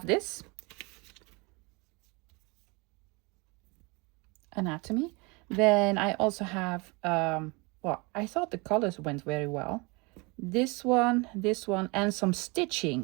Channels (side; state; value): left; quieter; 27.8 dB